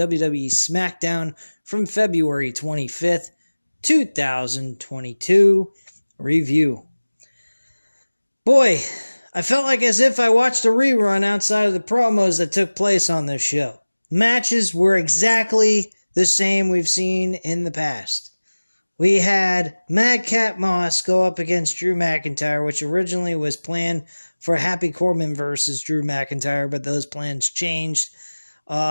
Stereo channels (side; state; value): both; inverted; correlation -1.00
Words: Smackdown from February 25th, 2022 review. Boy, I felt like as if I watched a rerun outside of the promos that took place on this show. Matches were exactly the same we've seen in the past. We had Madcap Moss go up against Drew McIntyre, which originally was planned for Happy Corbin versus Drew McIntyre, but those plans changed